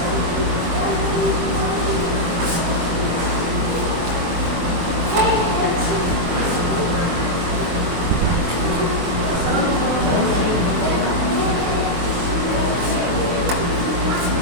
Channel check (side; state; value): left; late; 23 ms